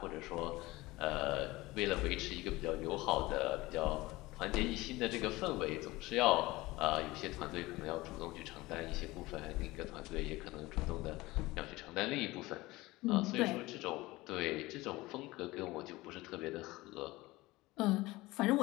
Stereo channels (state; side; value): quieter; right; 20.1 dB